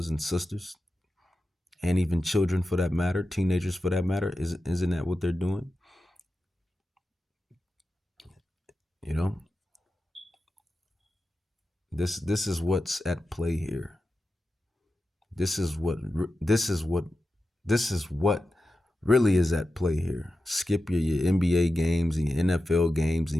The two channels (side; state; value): both; normal; correlation 0.92